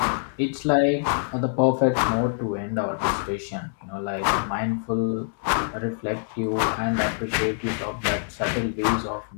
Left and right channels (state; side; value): silent; right; digital silence